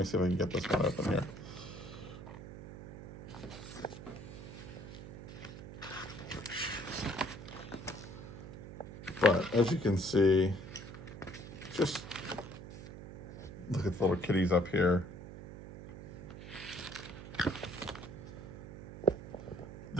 see if I can get this one open here. But as you can see, just look at the little kitties up here.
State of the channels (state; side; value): noise; right; hum, 12 dB below the sound